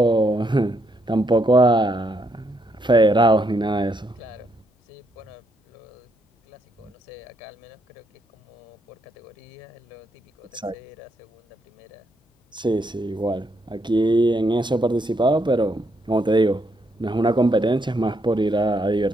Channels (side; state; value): both; normal; correlation 0.76